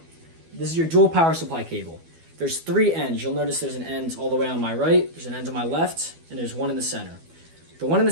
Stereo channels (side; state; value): left; late; 12 ms